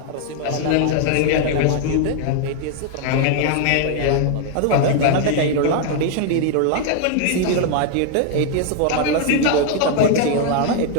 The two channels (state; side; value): different; both; correlation 0.00